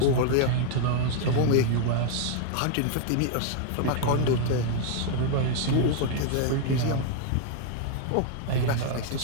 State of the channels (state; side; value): different; both; correlation 0.00